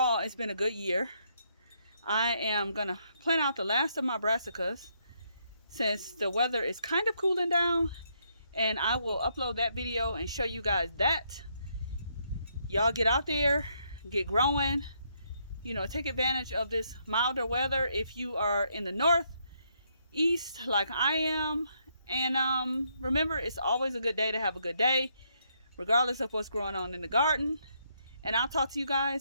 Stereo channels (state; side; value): inverted; both; correlation -0.74